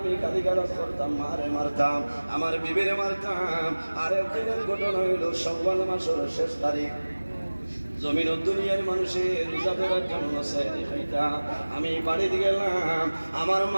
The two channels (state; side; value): inverted; both; correlation -1.00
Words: গালিগালাজ করতাম, মারে মারতাম, আমার বিবিরে মারতাম। আর একদিনের ঘটনা হইল শাওয়াল মাসের শেষ তারিখ, জমিন দুনিয়ার মানুষের রোজা ধরার জন্য সেহরি খাইতাম, আমি বাড়িতে গেলাম, আমার